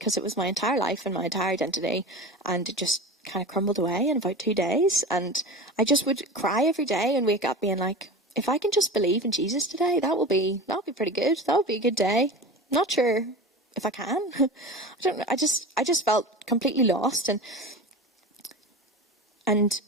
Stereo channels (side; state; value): both; normal; correlation 0.31